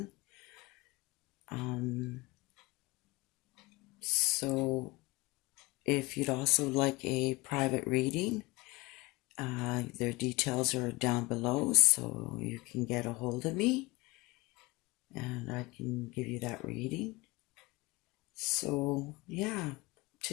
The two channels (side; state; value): right; quieter; 23.2 dB